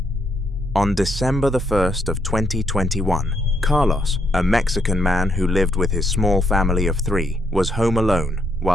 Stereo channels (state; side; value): normal; both; correlation 0.75